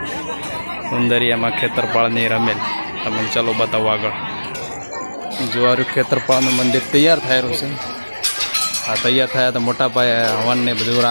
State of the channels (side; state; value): both; inverted; correlation -1.00